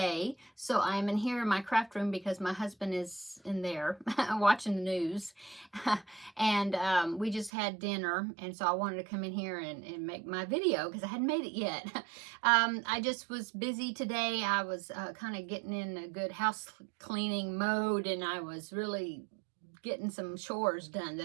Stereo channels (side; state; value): left; drops out; at 7.5 s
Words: so I'm in here in my craft room because my husband is in there watching the news. And we just had dinner, and so I wanted to come in here and make my video because I hadn't made it yet. I just was busy today. I was kind of getting in a good house cleaning mode, and I was really getting some chores done